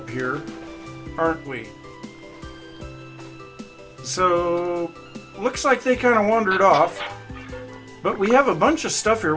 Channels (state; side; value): identical; both; correlation 1.00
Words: here, aren't we? So, looks like they kind of wandered off. But we have a bunch of stuff here.